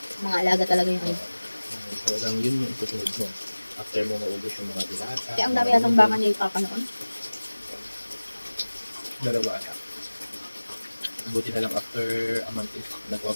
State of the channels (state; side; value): inverted; both; correlation -1.00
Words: Mga alaga talaga yung ano. Talagang yun yung itutunod mo. After mo maubos yung mga dilata. Kaya ang dami yatang baka niya ipapanoon. Dalawa ata. Buti na lang after a month is